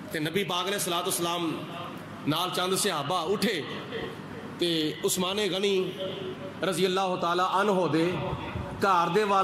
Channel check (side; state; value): both; identical; correlation 1.00